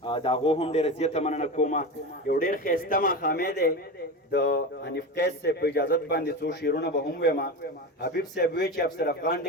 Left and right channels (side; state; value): both; normal; correlation 0.24